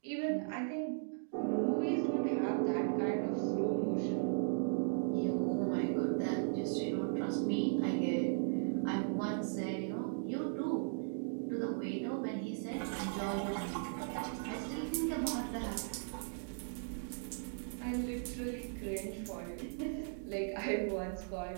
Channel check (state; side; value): silent; left; digital silence